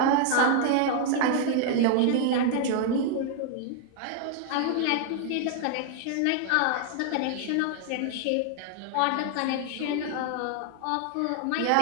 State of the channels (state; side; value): different; both; correlation 0.00